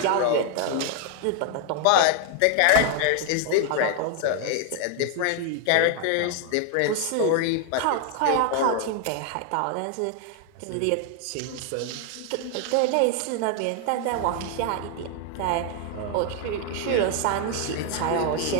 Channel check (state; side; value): different; both; correlation 0.00